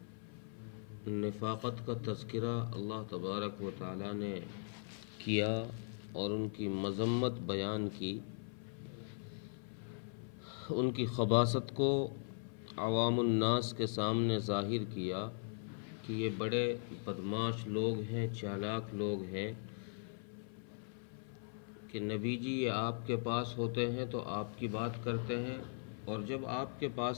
نفاقت کا تذکرہ اللہ تبارک و تعالیٰ نے کیا اور ان کی مذمت بیان کی، ان کی خباثت کو عوام الناس کے سامنے ظاہر کیا کہ یہ بڑے بدماش لوگ ہیں، چالاک لوگ ہیں کہ نبی جی یہ آپ کے پاس ہوتے ہیں تو آپ کی بات کرتے ہیں، اور جب آپ کے پاس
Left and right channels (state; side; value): silent; right; 52 dB below the other